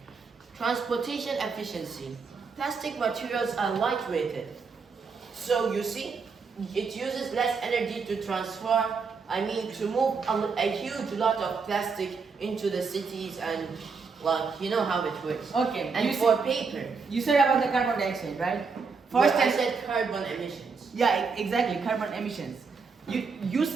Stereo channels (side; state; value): left; quieter; 5.0 dB